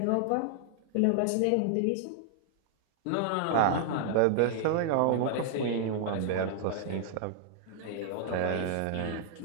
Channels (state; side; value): different; both; correlation -0.01